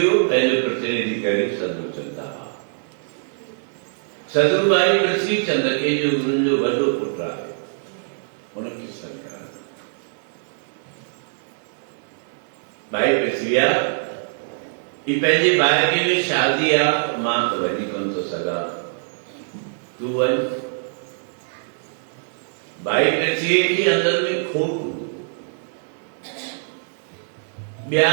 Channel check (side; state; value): left; silent; 63 dB below the other